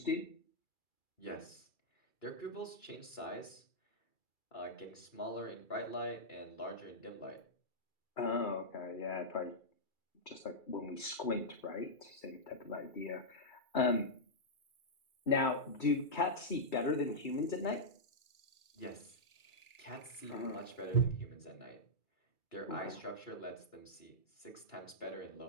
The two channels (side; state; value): right; late; 2.3 ms